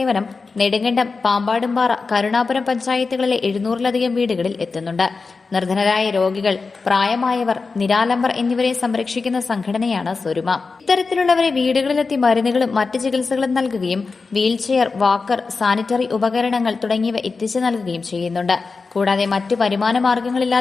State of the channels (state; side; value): quieter; right; 4.4 dB